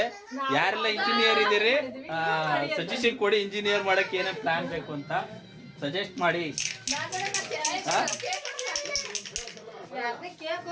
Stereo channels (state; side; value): identical; both; correlation 1.00